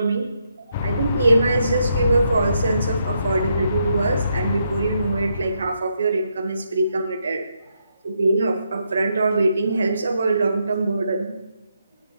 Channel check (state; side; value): inverted; both; correlation -0.78